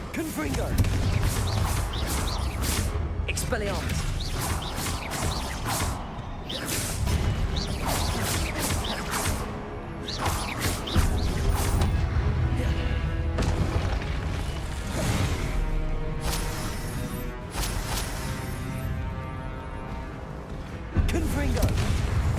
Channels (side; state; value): both; identical; correlation 1.00